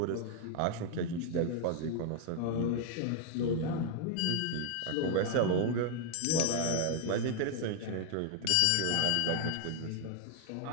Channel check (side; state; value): both; different; correlation 0.00